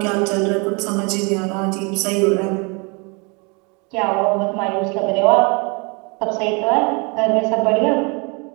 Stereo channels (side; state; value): left; quieter; 31.2 dB